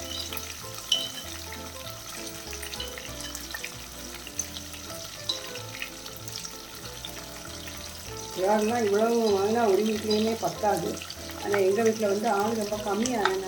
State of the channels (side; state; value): right; noise; rumble, 28 dB below the sound